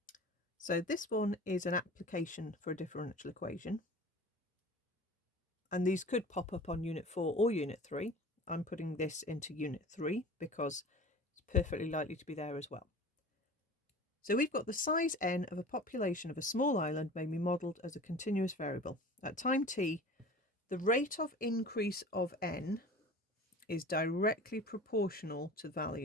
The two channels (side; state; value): both; normal; correlation 0.39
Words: So this one is an application for a differential equation. And these could pop up on Unit 4 or Unit 3. I'm putting this into Unit 3 because it's perfectly likely to be there as well. So we've got the size n of a population of a small island may be modelled as a continuous variable. At time t, the rate of increase of n is directly proportional to the